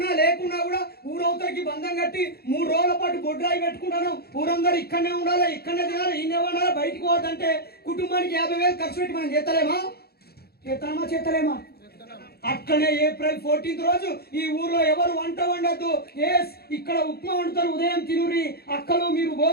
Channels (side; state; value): right; late; 0.46 ms